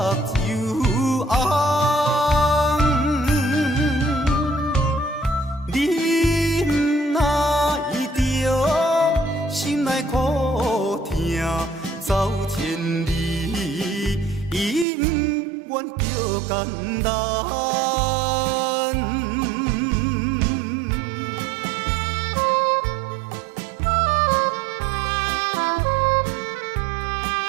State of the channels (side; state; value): left; drops out; at 14.9 s